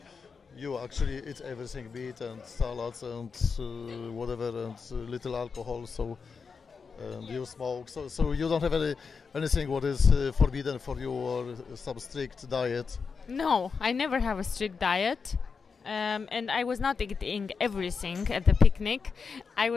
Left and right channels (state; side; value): quieter; right; 5.3 dB